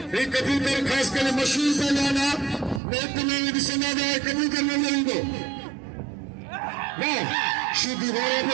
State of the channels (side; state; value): left; drops out; at 2.8 s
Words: एक कबूतर खास कली मशहूर पहलवाना नेत में दिसना है कबूतर में दो ना शुद्ध वाला